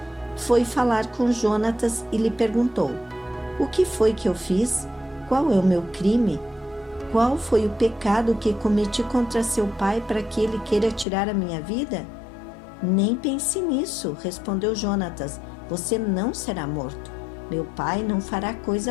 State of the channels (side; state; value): right; drops out; at 11.1 s